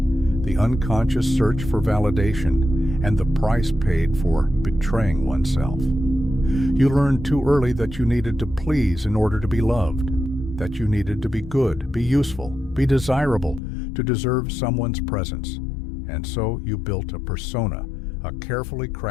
unconscious search for validation and the price paid for betraying oneself. You learned too early that you needed to please in order to be loved, that you needed to be good, be useful, be desirable, to deserve someone's presence. And so you built a persona, a carefully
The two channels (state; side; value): drops out; right; at 13.6 s